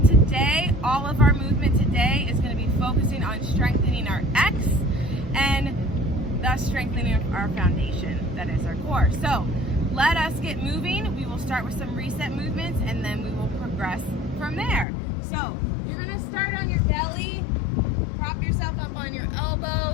all of our movement today is going to be focusing on strengthening our X and thus strengthening our foundation, that is our core. So let us get moving. We will start with some reset movements and then we will progress from there. So you're going to start on your belly, prop yourself up on your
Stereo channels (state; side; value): drops out; right; at 14.9 s